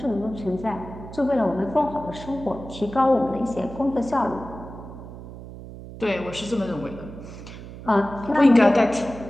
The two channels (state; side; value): noise; right; hum, 13 dB below the sound